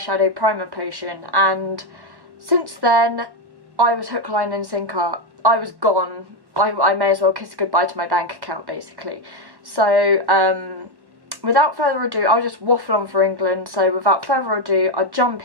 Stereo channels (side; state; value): left; late; 1.1 ms